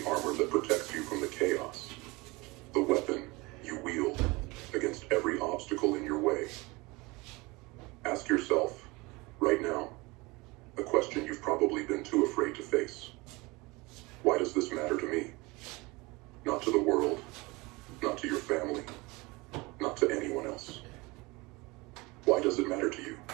armor that protects you from the chaos, the weapon you wield against every obstacle in your way. Ask yourself, right now, a question you've probably been too afraid to face. Why does this matter to me? Not to the world, not to your family, not to anyone else. Why does it matter to you?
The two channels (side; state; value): left; quieter; 24.1 dB